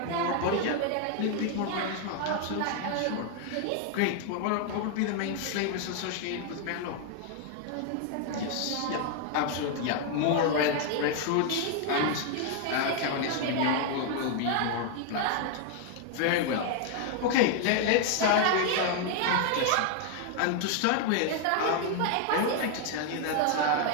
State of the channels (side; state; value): both; different; correlation 0.00